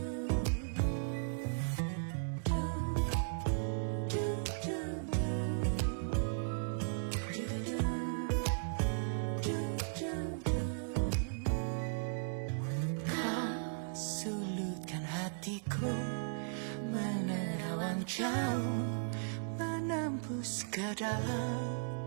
Sulutkan hatiku, menerawang jauh, menembus ke dalam.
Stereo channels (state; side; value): silent; left; digital silence